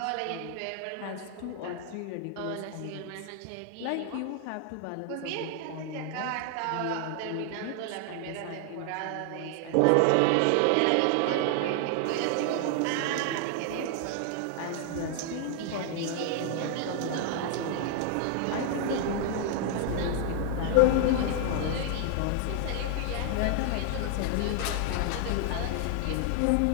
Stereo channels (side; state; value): both; different; correlation 0.00